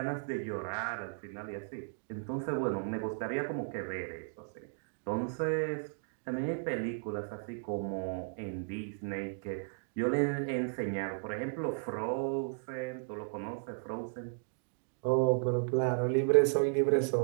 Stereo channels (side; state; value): left; silent; digital silence